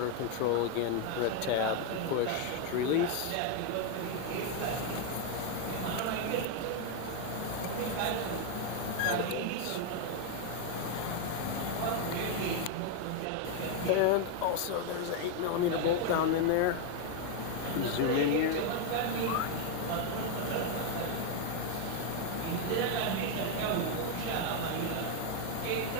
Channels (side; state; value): both; different; correlation 0.01